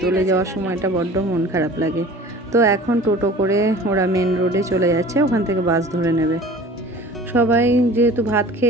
চলে যাওয়ার সময়টা বড্ড মন খারাপ লাগে। তো এখন টোটো করে ওরা মেন রোডে চলে যাচ্ছে, ওখান থেকে বাস ধরে নেবে। সবাই যেহেতু ভাত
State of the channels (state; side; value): normal; both; correlation 0.43